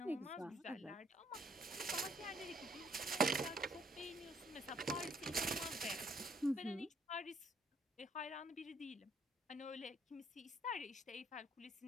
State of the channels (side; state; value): both; normal; correlation 0.65